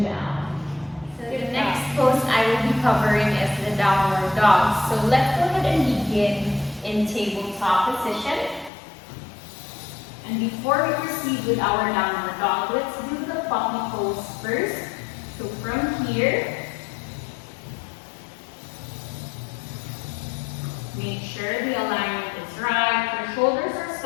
down. So the next pose I will be covering is the downward dog. So let's go ahead and begin in tabletop position. And before we proceed with our downward dog, let's do the puppy pose first. So from here, make sure the alignment is right. Your shoulders are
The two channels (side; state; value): right; drops out; at 8.7 s